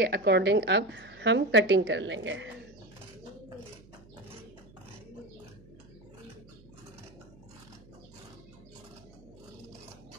अकॉर्डिंग अब हम कटिंग कर लेंगे।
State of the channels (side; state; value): right; noise; hum, 23 dB below the sound